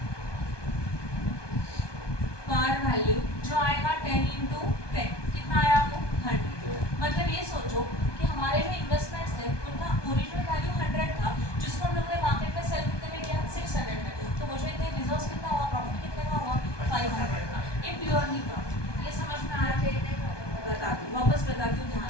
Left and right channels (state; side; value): late; right; 1.2 ms